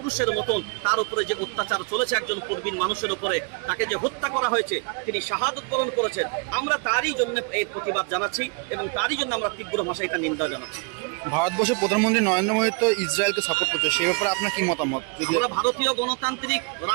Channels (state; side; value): quieter; left; 33.8 dB